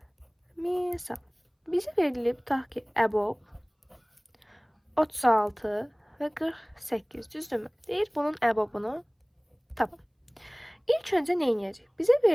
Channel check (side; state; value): both; identical; correlation 1.00